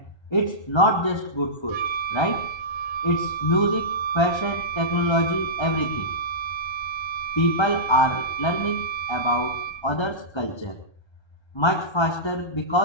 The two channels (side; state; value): right; late; 1.3 ms